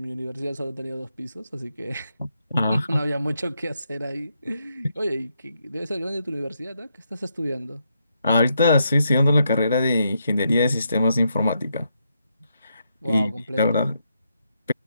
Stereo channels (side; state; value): both; inverted; correlation -0.80